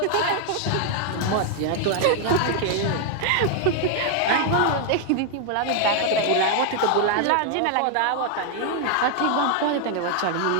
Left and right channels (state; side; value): different; both; correlation 0.00